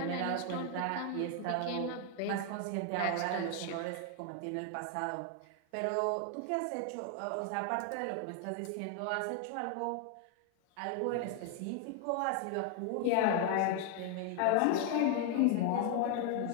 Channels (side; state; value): both; different; correlation 0.00